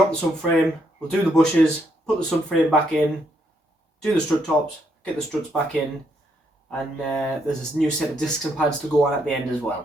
the subframe, we'll do the bushes, put the subframe back in, do the strut tops, get the struts back in, and there's this new set of discs and pads to go on at the end as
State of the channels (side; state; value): both; normal; correlation 0.75